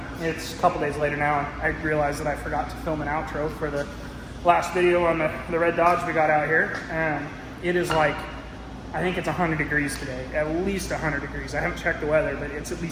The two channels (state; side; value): identical; both; correlation 1.00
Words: it's a couple days later now, and I realized that I forgot to film an outro for the last video on the red Dodge we got out here. It is like, I think it's 100 degrees today, at least 100 degrees. I haven't checked the weather, but it's at